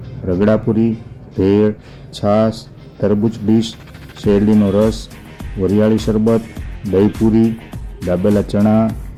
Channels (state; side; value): identical; both; correlation 1.00